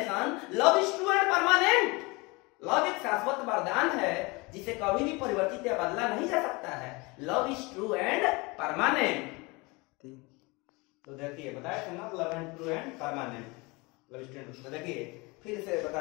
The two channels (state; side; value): quieter; right; 25.9 dB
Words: love is true and permanent. Love एक शाश्वत वरदान है जिसे कभी भी परिवर्तित या बदला नहीं जा सकता है। Love is true and permanent. तो देखिए बताया था ना, love and true and permanent, love is true. तो देखिए फिर से